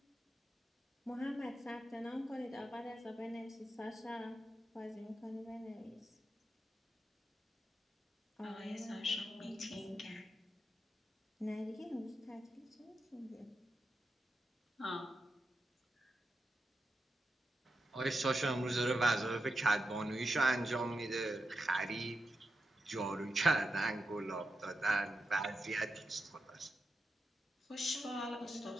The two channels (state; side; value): normal; both; correlation 0.87